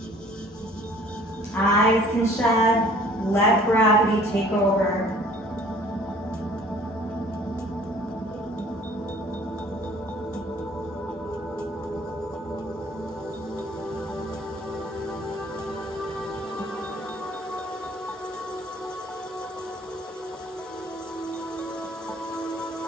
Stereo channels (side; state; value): both; normal; correlation 0.53